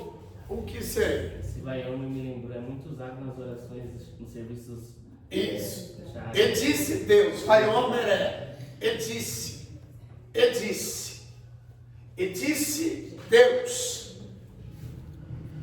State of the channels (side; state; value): both; identical; correlation 1.00